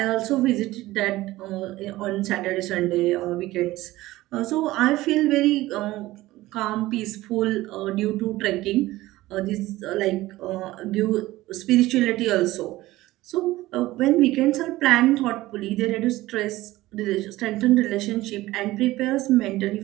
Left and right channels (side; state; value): left; quieter; 17.5 dB